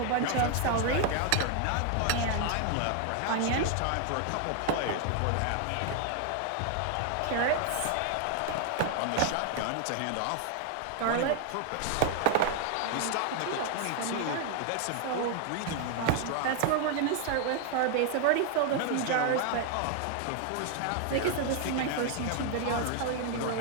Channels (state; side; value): different; both; correlation 0.00